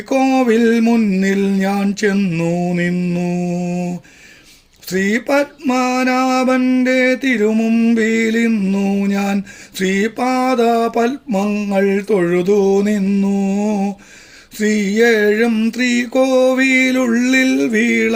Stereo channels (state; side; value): identical; both; correlation 1.00